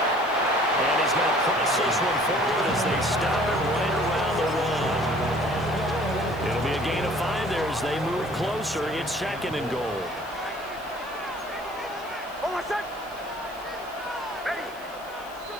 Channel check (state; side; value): noise; left; hiss, 22 dB below the sound